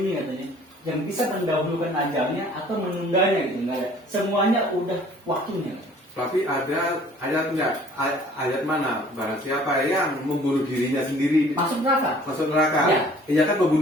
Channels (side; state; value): both; normal; correlation 0.53